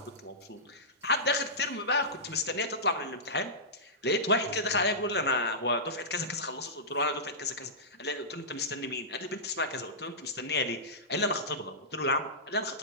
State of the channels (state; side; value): normal; both; correlation -0.17